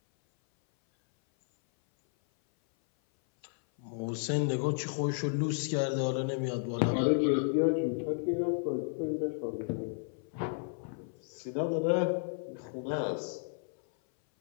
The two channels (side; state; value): right; silent; 56 dB below the other